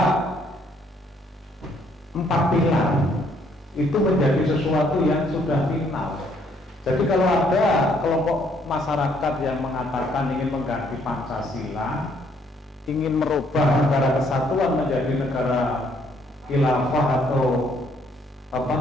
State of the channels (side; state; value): both; normal; correlation 0.67